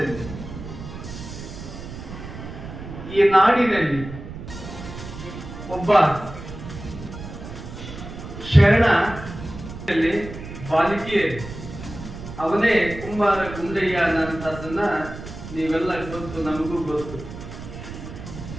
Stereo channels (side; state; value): right; noise; rumble, 11 dB below the sound